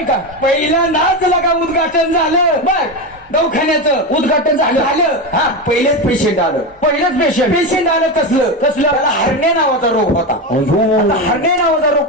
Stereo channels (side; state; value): both; normal; correlation 0.16